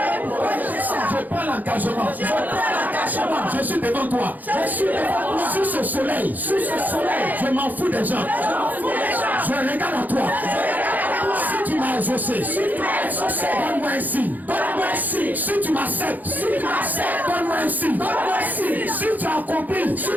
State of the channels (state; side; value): late; left; 0.082 ms